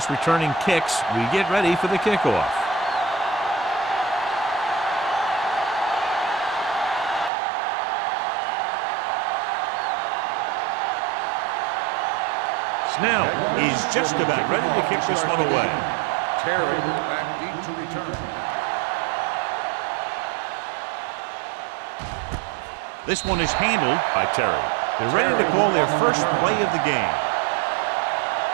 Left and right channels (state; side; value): drops out; left; at 7.3 s